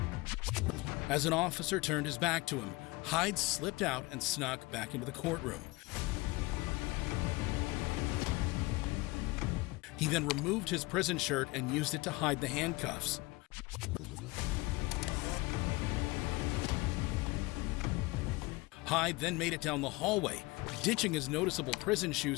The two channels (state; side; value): quieter; right; 22.8 dB